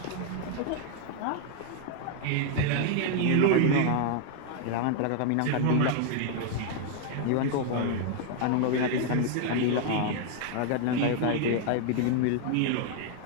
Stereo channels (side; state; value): both; different; correlation 0.00